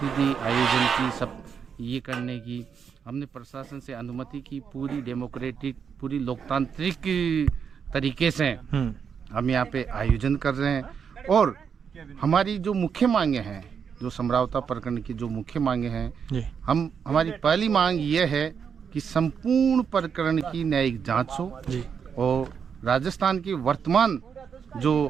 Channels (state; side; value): quieter; left; 6.9 dB